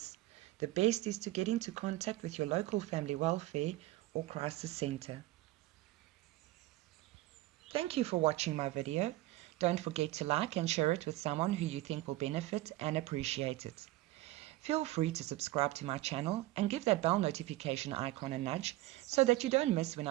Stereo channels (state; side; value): quieter; left; 17.1 dB